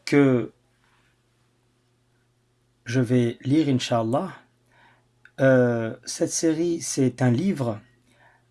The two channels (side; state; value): both; identical; correlation 1.00